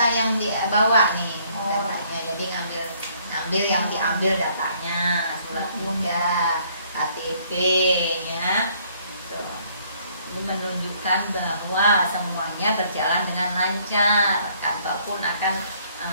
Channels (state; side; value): inverted; both; correlation -0.64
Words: yang dibawa nih, Oh. datanya. Jadi ngambil yang diambil datanya, surat muda, KTP, ya. Tuh. Ini menunjukkan bahwa semuanya berjalan dengan lancar. Kantor pun akan